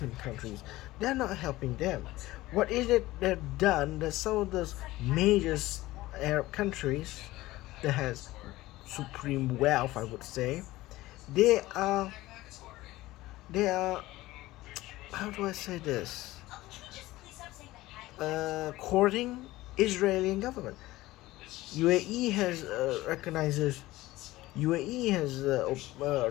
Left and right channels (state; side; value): quieter; right; 17.8 dB